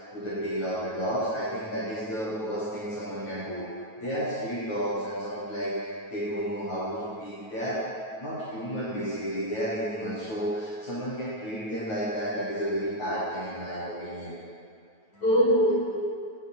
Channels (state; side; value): late; right; 9.3 ms